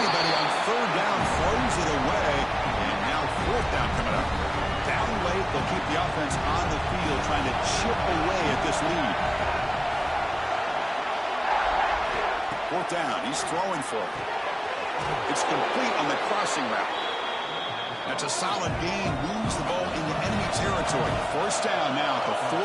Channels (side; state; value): both; identical; correlation 1.00